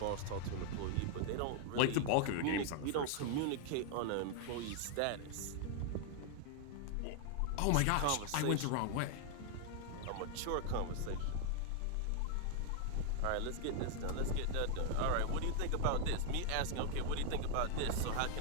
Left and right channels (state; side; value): different; both; correlation 0.00